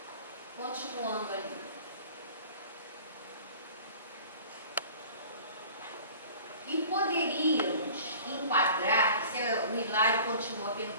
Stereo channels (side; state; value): both; inverted; correlation -0.44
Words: Continuando ali. E poderíamos enquadrar, o Hilário continua a